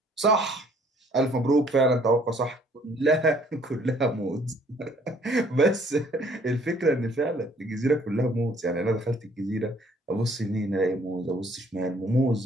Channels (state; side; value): normal; both; correlation 0.60